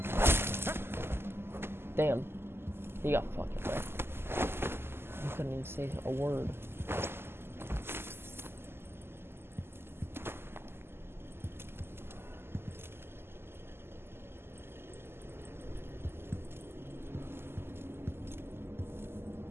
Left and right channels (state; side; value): late; left; 0.12 ms